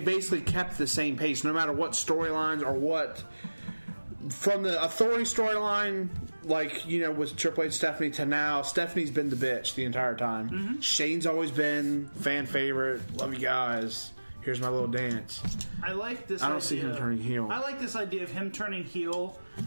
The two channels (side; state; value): both; inverted; correlation -1.00